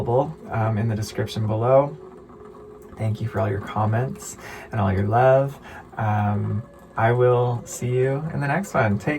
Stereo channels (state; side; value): identical; both; correlation 1.00